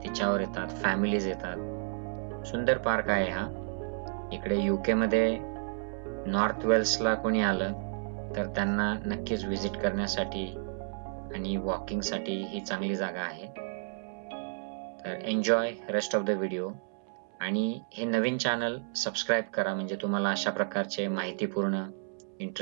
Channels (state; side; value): silent; left; 57 dB below the other